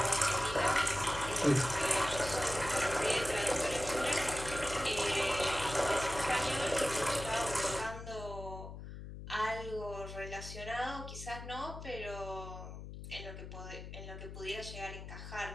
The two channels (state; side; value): noise; left; hum, 10 dB below the sound